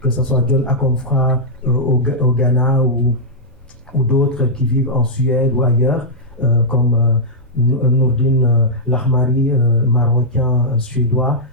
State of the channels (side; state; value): both; normal; correlation -0.08